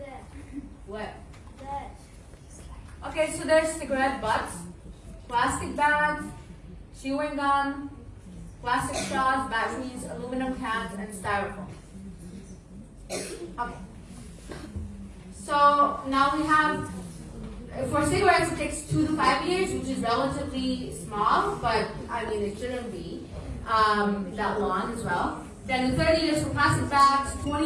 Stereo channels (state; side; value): identical; both; correlation 1.00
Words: What? That. Okay, so there's cigarette butts, plastic bags, chewing gum, plastic straws, batteries, aluminum cans, and styrofoam. Okay. So now we have, for cigarettes it takes 2 to 5 years, which is relatively small, but I mean it shouldn't be that long as well. Then 30 years for plastic bags,